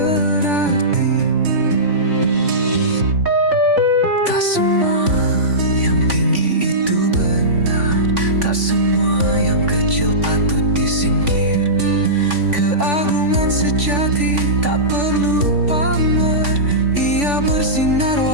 Tak semua yang tinggi itu benar, tak semua yang kecil patut disingkir. Keagungan sejati tak perlu pamer, ia bersinar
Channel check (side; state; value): left; late; 3.5 ms